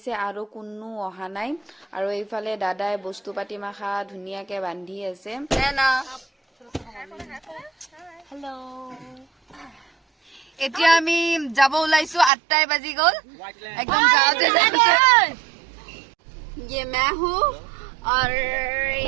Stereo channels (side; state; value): left; drops out; at 12.3 s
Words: আৰু কোনো অহা নাই। আৰু এইফালে দাদাই বস্তু পাতি মাখা ধুনীয়াকে বান্ধি আছে। হেল্ল', এতিয়া আমি যাব ওলাইছো। 8টাই বাজি গ'ল। একদম যাওঁতে ये मैं हूँ और